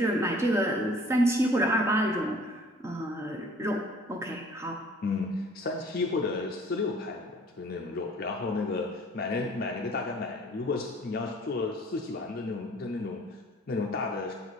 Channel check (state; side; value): normal; both; correlation 0.52